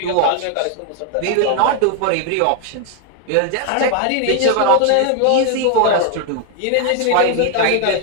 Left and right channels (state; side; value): different; both; correlation 0.00